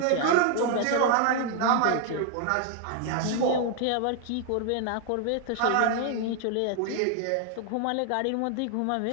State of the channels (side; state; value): both; different; correlation 0.00